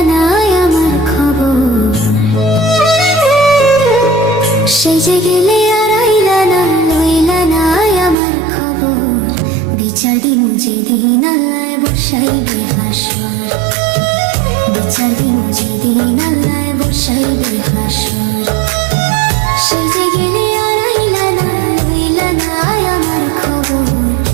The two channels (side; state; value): left; drops out; at 8.2 s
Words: না আমার খবর। সেজে গেলে আর আইলা না, লইলা না আমার খবর। বিচার দিমু যেদিন আল্লাহ বসাইবে হাসর, বিচার দিমু যেদিন আল্লাহ বসাইবে হাসর। সেজে গেলে আর আইলা না, লইলা না আমার খবর।